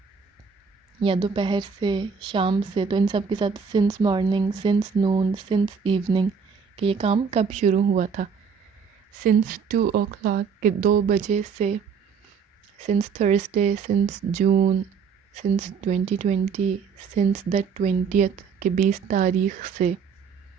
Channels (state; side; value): quieter; left; 6.1 dB